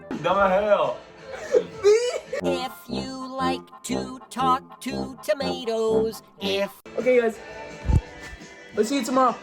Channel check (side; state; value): both; identical; correlation 1.00